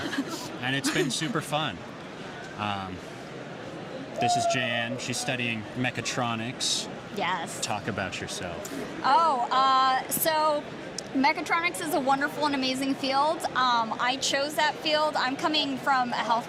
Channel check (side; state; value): both; identical; correlation 1.00